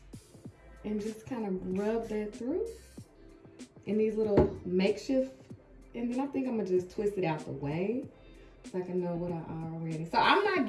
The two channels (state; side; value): identical; both; correlation 1.00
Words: and just kind of rub that through in these little makeshift, and then I think I'm gonna just twist it out the way so I can know what I already. So I'm not